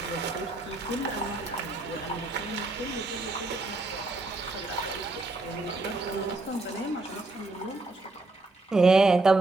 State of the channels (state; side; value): quieter; left; 3.2 dB